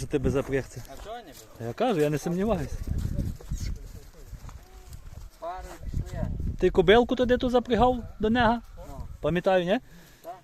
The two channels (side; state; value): both; identical; correlation 1.00